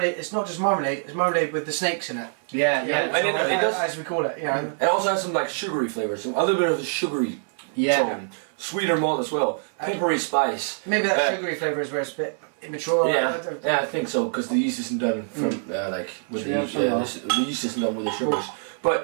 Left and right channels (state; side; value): silent; left; digital silence